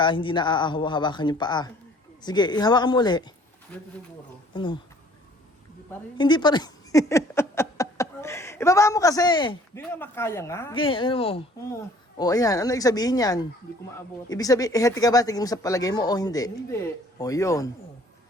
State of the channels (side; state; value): both; normal; correlation 0.55